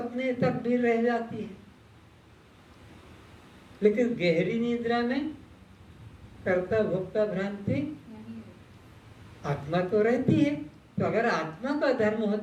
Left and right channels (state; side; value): identical; both; correlation 1.00